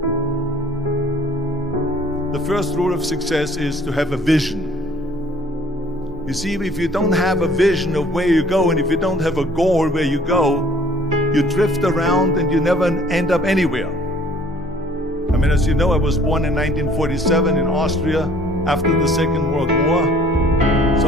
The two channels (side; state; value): both; normal; correlation 0.55